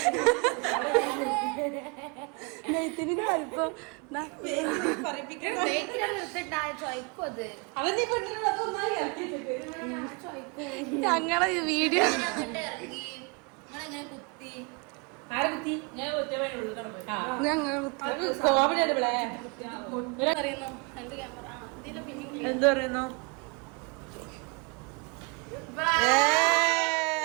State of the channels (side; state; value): left; quieter; 31.8 dB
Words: നെയ്ത്തിരിന്റെ വലിപ്പം ഞങ്ങളെ വീഡിയോ എന്ത് പറയുന്നു?